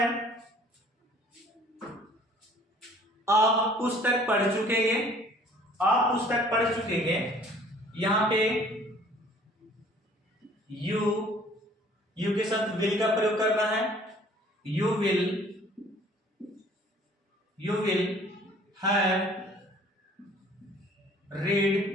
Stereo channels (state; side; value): normal; both; correlation 0.54